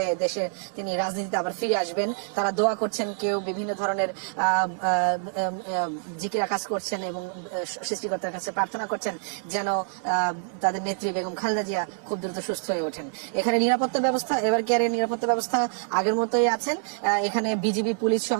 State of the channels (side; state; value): left; silent; digital silence